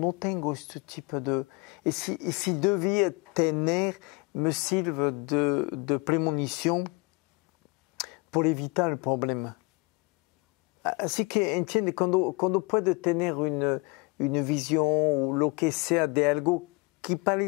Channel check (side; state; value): right; quieter; 27.2 dB